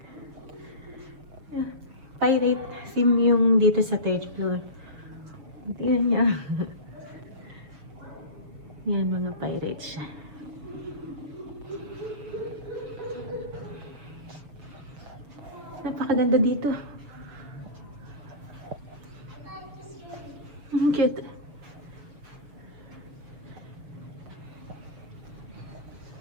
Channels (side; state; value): left; late; 7.0 ms